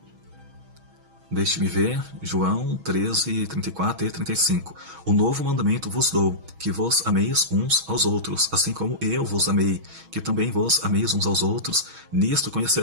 Deixe-me ver, João 13, 34 e 35. O novo mandamento vos dou, que vos ameis uns aos outros, assim como eu vos amei, que também vos ameis uns aos outros. Nisto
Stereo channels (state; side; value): late; left; 6.3 ms